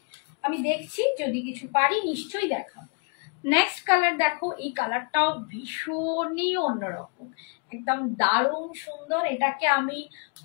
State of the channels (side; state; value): right; quieter; 38.4 dB